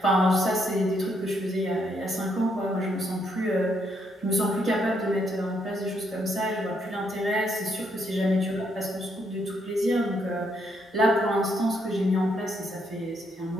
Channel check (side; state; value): both; normal; correlation 0.74